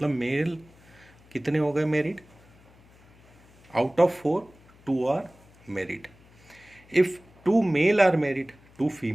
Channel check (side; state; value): left; noise; hum, 27 dB below the sound